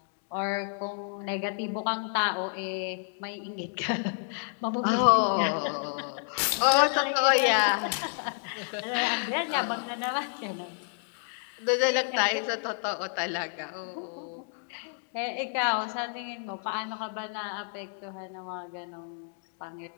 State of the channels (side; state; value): right; silent; 58 dB below the other